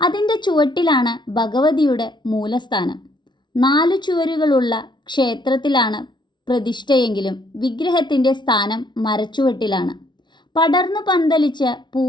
ചുവട്ടിലാണ് ഭഗവതിയുടെ മൂലസ്ഥാനം. 4 ചുവരുകളുള്ള ക്ഷേത്രത്തിലാണ് പ്രതിഷ്ഠയെങ്കിലും വിഗ്രഹത്തിൻ്റെ സ്ഥാനം മരച്ചുവട്ടിലാണ്, പടർന്നു പന്തലിച്ച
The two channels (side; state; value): right; late; 0.22 ms